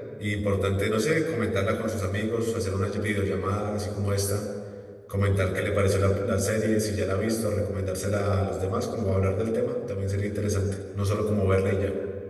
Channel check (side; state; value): both; identical; correlation 1.00